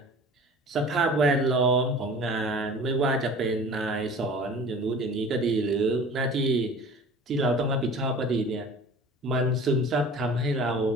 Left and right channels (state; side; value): normal; both; correlation 0.43